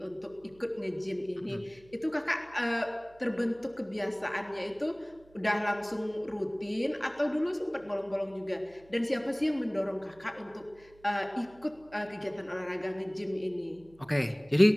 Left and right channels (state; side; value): noise; right; hum, 26 dB below the sound